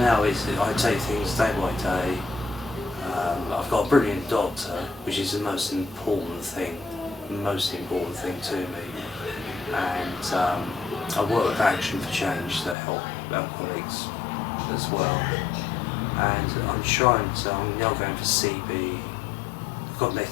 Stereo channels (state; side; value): drops out; right; at 12.8 s